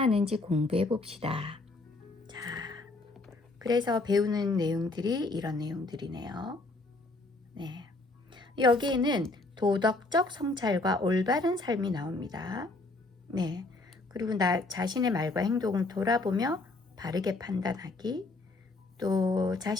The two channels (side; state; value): right; quieter; 3.2 dB